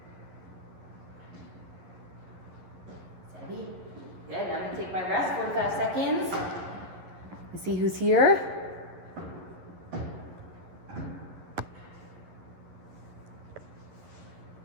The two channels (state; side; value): late; left; 11 ms